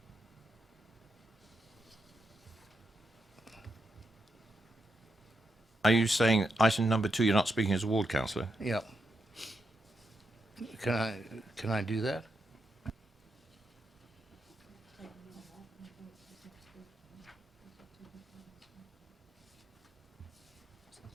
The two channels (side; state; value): both; normal; correlation 0.83